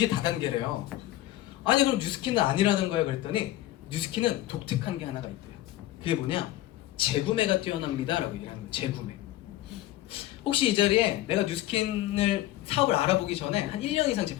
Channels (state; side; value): quieter; right; 15.2 dB